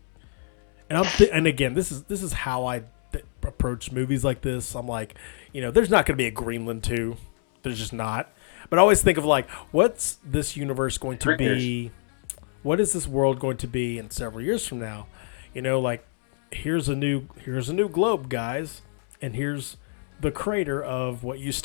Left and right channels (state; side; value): silent; right; 61 dB below the other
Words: and and again, this is how I approach movies like this. I'm like, there's not going to be a Greenland 2. There's just not. But I always think of like, what's this universe going to be? What is this world going to be in several years from now? Like here's a new globe, guys, and here's the crater of what used